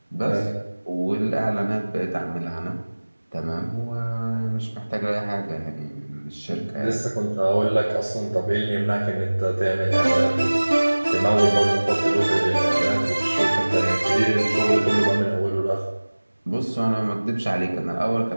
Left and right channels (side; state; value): both; inverted; correlation -1.00